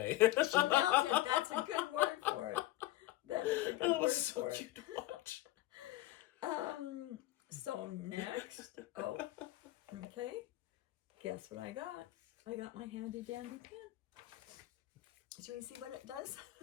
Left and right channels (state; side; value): quieter; right; 16.8 dB